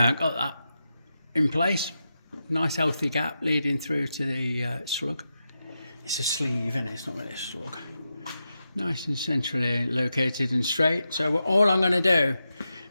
in place. Nice healthy gap leading through to the slug. It's a sleeve, isn't it? It's not really a slug. Nice and centrally located and straight. So all I'm going to do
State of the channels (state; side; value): inverted; both; correlation -0.88